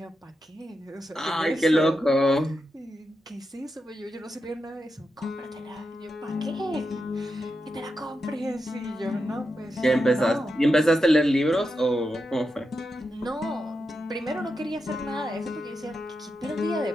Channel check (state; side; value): normal; both; correlation 0.87